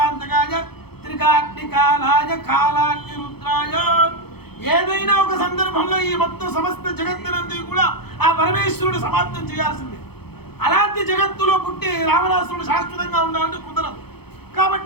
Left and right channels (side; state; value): right; late; 0.96 ms